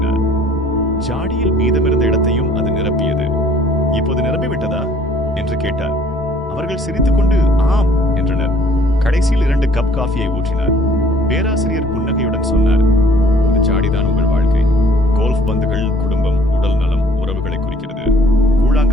ஜாடியில் மீதமிருந்த இடத்தையும் அது நிரப்பியது. இப்போது நிரம்பிவிட்டதா என்று கேட்டார். அவர்கள் சிரித்துக்கொண்டு ஆம் என்றனர். கடைசியில் 2 கப் காஃபியை ஊற்றினார். பேராசிரியர் புன்னகையுடன் சொன்னார், இந்த ஜாடிதான் உங்கள் வாழ்க்கை. கோல்ஃப் பந்துகள் குடும்பம், உடல் நலம், உறவுகளை குறிக்கிறது.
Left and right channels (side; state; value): both; normal; correlation 0.57